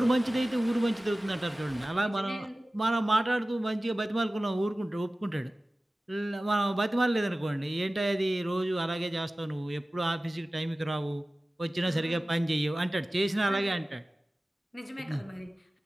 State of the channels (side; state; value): both; normal; correlation 0.97